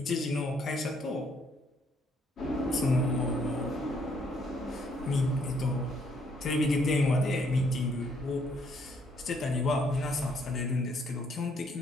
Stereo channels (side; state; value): both; normal; correlation 0.69